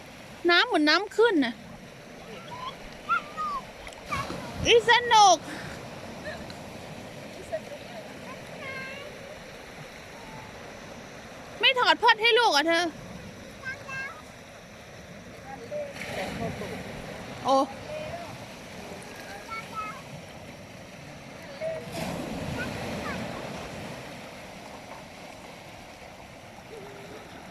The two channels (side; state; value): both; identical; correlation 1.00